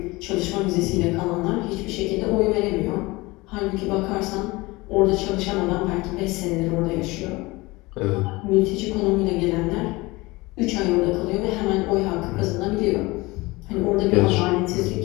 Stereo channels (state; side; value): quieter; right; 22.2 dB